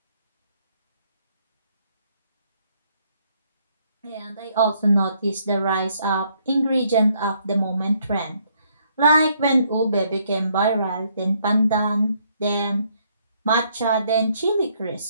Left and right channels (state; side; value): inverted; both; correlation -0.69